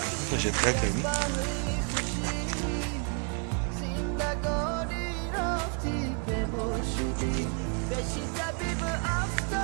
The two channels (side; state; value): left; quieter; 37.8 dB